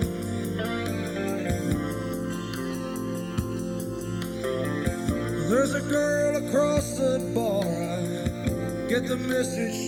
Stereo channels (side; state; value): both; identical; correlation 1.00